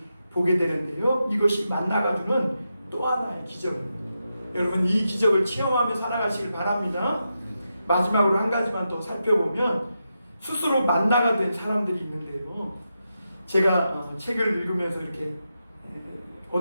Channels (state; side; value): inverted; both; correlation -0.87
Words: 보게 되는데요. 이것이 만나가 주는 또 하나의 기적입니다. 여러분, 이 기적을 체험하며 살아가시길 바랍니다. 마지막으로 한 가지만 더 살펴보면 스스로 만나가 된 사람들이 있는데요. 제가 책을 읽으면서 이렇게